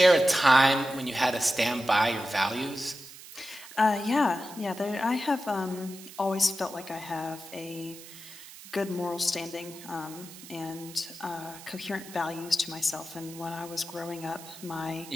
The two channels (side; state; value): right; noise; hiss, 16 dB below the sound